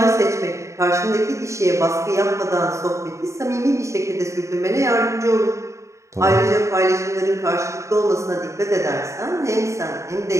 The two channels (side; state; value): left; late; 0.14 ms